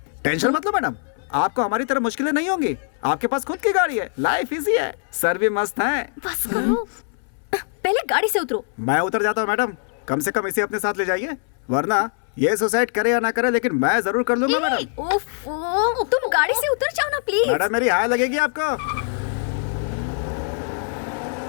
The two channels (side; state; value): right; silent; 62 dB below the other